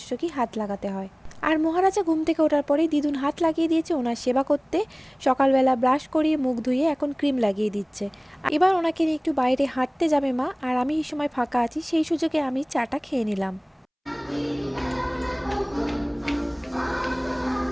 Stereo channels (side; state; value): both; identical; correlation 1.00